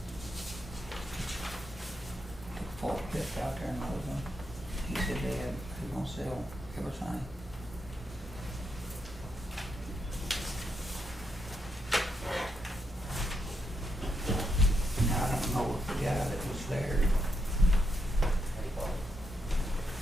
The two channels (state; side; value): normal; both; correlation 0.81